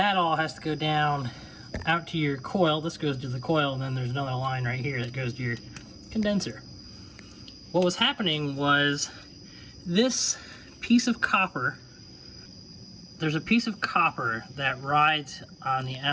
all has to go down out to your coil. This goes to the coil, and then there's another line right here that goes to your condenser. What was happening was this piece of copper, there's a piece of copper that rides on the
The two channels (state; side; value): identical; both; correlation 1.00